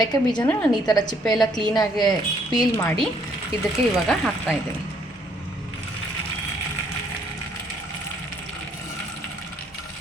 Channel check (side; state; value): both; normal; correlation 0.66